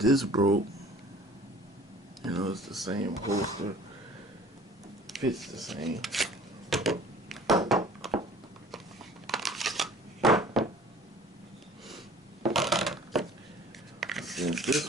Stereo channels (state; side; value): normal; both; correlation 0.49